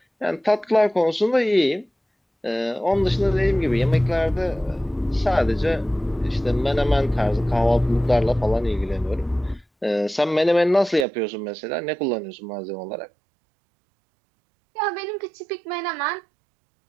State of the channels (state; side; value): drops out; left; at 11.1 s